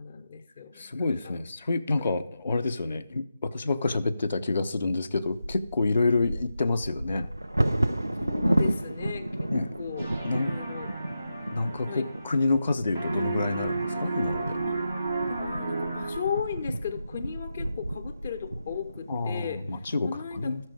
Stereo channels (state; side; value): inverted; both; correlation -0.87